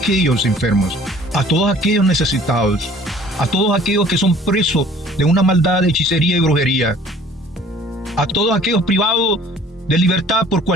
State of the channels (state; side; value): normal; both; correlation 0.52